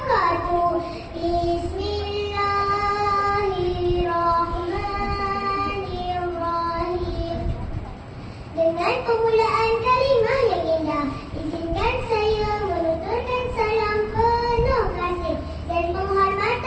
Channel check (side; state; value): both; identical; correlation 1.00